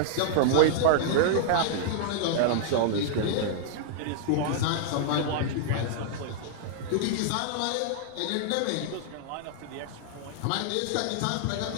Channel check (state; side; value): different; both; correlation -0.01